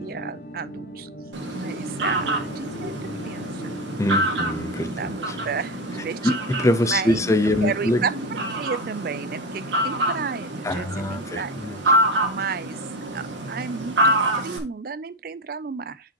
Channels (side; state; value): both; normal; correlation 0.22